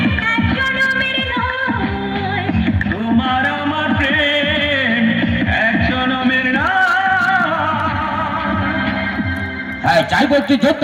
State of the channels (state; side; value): identical; both; correlation 1.00